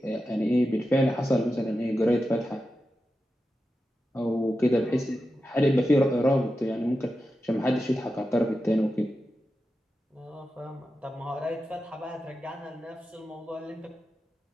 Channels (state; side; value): normal; both; correlation 0.91